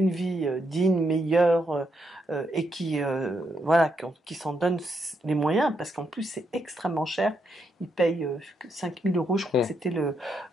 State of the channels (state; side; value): normal; both; correlation 0.79